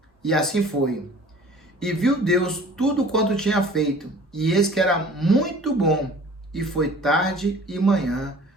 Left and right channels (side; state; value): both; normal; correlation 0.47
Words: E assim foi. E viu Deus tudo quanto tinha feito, e eis que era muito bom, e foi tarde e manhã